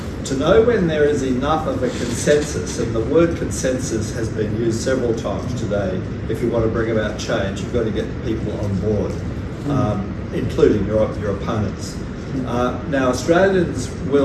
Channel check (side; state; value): both; identical; correlation 1.00